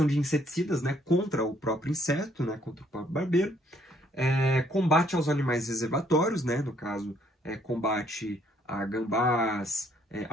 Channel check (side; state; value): both; normal; correlation 0.66